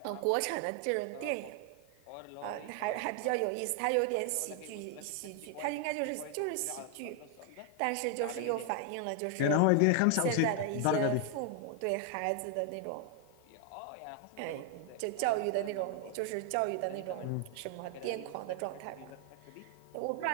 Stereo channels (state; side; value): different; both; correlation 0.00